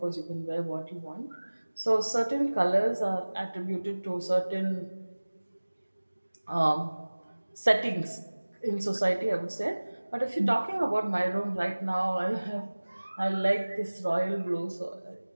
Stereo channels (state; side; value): inverted; both; correlation -1.00